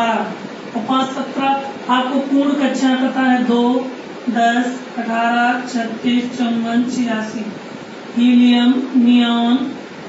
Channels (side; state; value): both; identical; correlation 1.00